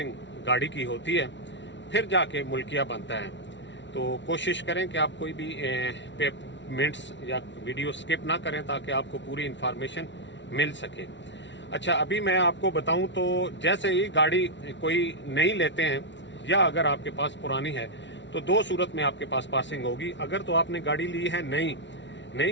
گاڑی کی ہوتی ہے, پھر جا کے ملکیہ بنتا ہے. تو کوشش کریں کہ آپ کوئی بھی منٹس یا ویڈیو سکپ نہ کریں تاکہ آپ کو پوری انفارمیشن مل سکے. اچھا ابھی میں آپ کو بتاؤں تو جیسے ہی گاڑی کوئی نئی لیتے ہیں یا اگر آپ کے پاس پرانی ہے تو دو صورت میں آپ کے پاس پاسنگ ہوگی. اگر تو آپ نے گاڑی لی ہے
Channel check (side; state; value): right; late; 0.53 ms